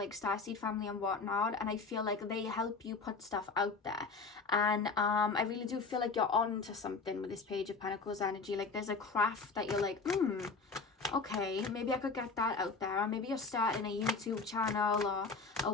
Starseed family and whatnot, and I feel like they help you put stuff out there. And I really do feel like you're on to something with this Page of Pentacles energy. Like there's a craft that you're like, okay, maybe I could get that out there. Or maybe you're starting a YouTube channel or a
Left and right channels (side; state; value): right; quieter; 4.4 dB